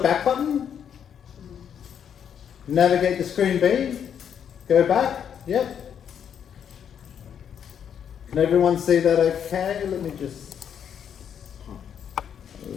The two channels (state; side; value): quieter; right; 8.4 dB